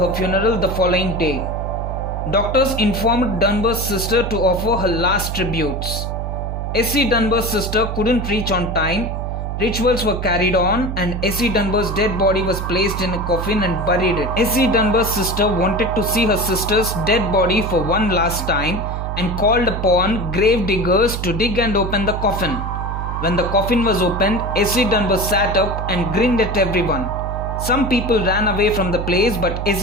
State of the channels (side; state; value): right; noise; hum, 4 dB below the sound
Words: funeral the following day. Doctors informed Dunbar's sister to offer her last tributes. Essie Dunbar's sister couldn't reach on time. Rituals were carried on and Essie Dunbar's dead body was placed in a coffin and buried it. Essie Dunbar's sister wanted to see her sister's dead body for one last time and called upon grave diggers to dig and open the coffin. When the coffin was opened, Essie Dunbar sat up and grinned at everyone. Some people ran away from the place, but